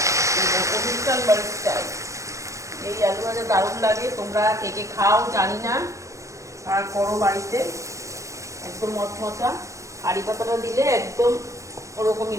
অনুষ্ঠান বাড়ির স্টাইল এই আলু ভাজা দারুণ লাগে। তোমরা কে কে খাও জানি না, আর করো বাড়িতে। একদম মচমচা, কারি পাতাটা দিলে একদম ওরকমই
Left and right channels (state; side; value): late; left; 0.15 ms